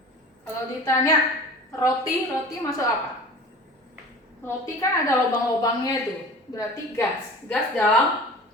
Kalau ditanya roti masuk apa? Roti kan ada lubang-lubangnya itu. Berarti gas. Gas dalam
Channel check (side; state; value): both; normal; correlation 0.40